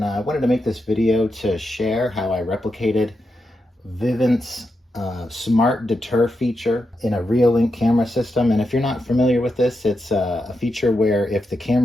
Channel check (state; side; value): normal; both; correlation 0.86